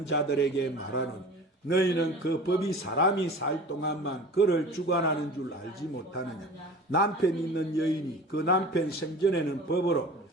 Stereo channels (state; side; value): normal; both; correlation 0.39